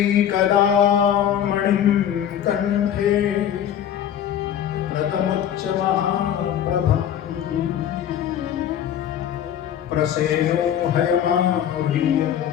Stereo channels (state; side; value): quieter; right; 9.8 dB